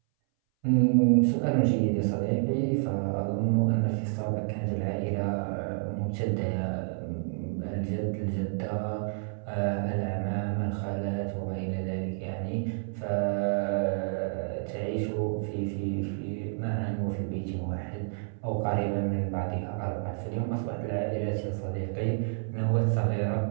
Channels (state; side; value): silent; left; 58 dB below the other